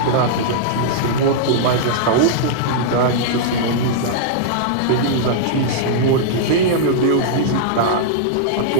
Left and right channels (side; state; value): both; different; correlation -0.02